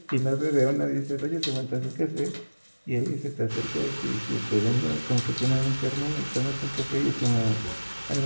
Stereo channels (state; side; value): inverted; both; correlation -1.00